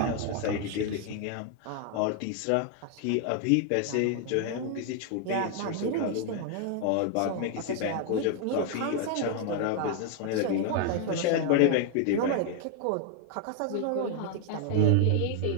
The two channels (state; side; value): different; both; correlation 0.00